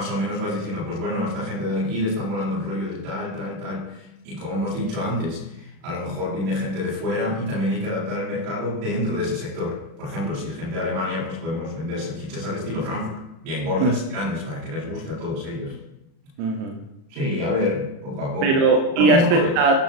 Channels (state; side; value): late; left; 37 ms